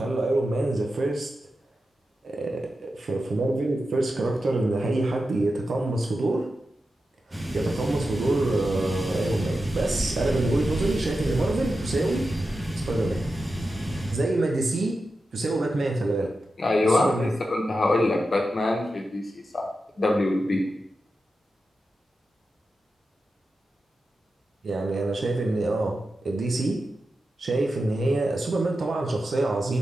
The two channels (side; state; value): both; normal; correlation 0.91